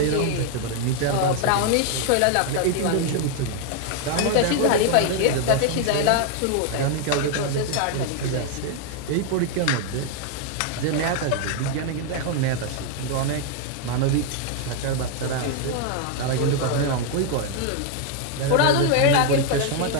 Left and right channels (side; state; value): both; different; correlation 0.00